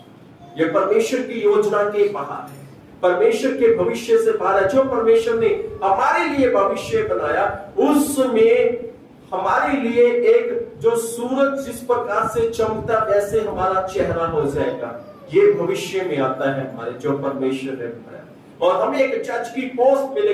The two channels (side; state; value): both; identical; correlation 1.00